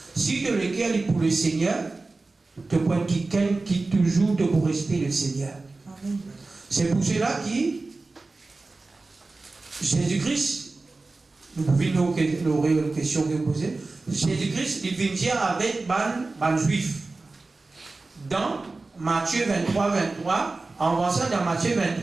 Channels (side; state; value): left; quieter; 3.5 dB